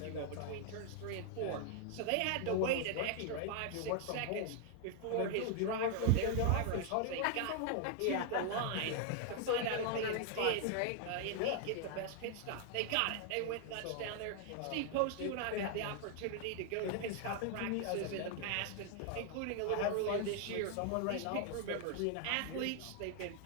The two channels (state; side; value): different; both; correlation 0.00